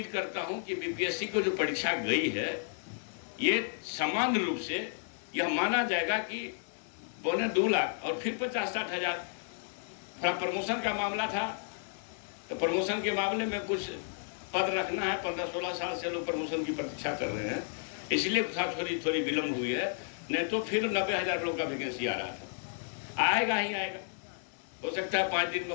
करता हूं कि बीपीएससी को जो परीक्षा गई है, ये सामान्य रूप से यह माना जाएगा कि 2.25 लाख और फिर 50-60 हज़ार। थोड़ा प्रमोशन का मामला था, तो प्रमोशन के मामले में कुछ पद रखना है, 15-16 साल से लोग प्रमोशन की प्रतीक्षा कर रहे हैं, इसलिए थोड़ी विलम्ब हुई है। नहीं तो फिर 90,000 लोग का वैकेंसी आ रहा था। आएगा ही आएगा, हो सकता है 5 दिन में,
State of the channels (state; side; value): silent; right; digital silence